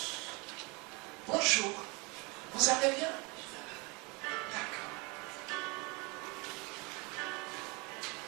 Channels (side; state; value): left; quieter; 28.3 dB